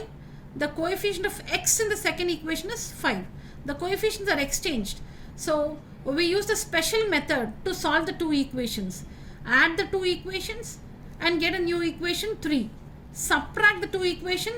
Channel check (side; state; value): both; identical; correlation 1.00